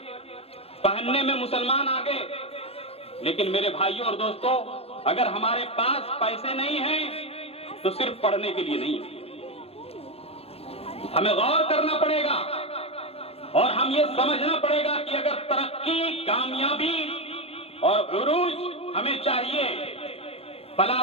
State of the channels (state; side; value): late; right; 0.29 ms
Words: पहनने में मुसलमान आगे, लेकिन मेरे भाइयों और दोस्तों, अगर हमारे पास पैसे नहीं हैं तो सिर्फ पढ़ने के लिए नहीं है। हमें गौर करना पड़ेगा और हम ये समझना पड़ेगा कि अगर तरक्की, कामयाबी और उरूज हमें चाहिए,